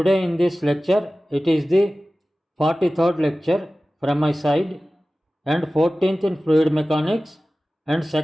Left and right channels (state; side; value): normal; both; correlation 0.96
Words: in this lecture, it is the 43rd lecture from my side and 14th in fluid mechanics and